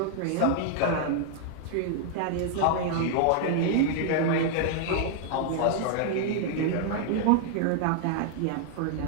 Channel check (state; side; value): different; both; correlation -0.01